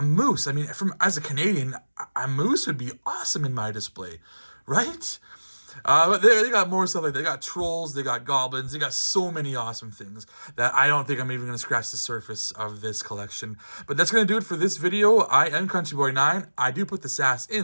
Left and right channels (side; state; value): both; inverted; correlation -1.00